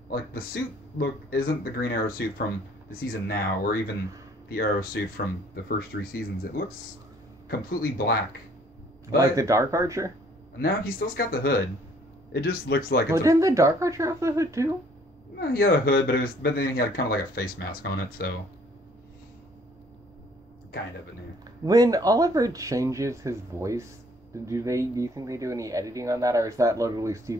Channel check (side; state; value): both; normal; correlation 0.60